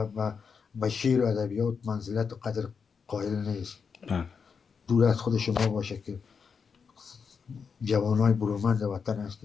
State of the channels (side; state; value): right; quieter; 5.9 dB